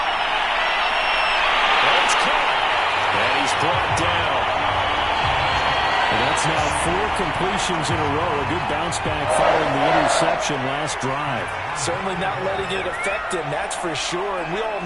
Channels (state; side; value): identical; both; correlation 1.00